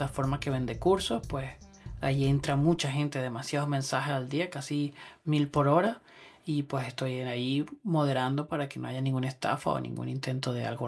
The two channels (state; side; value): identical; both; correlation 1.00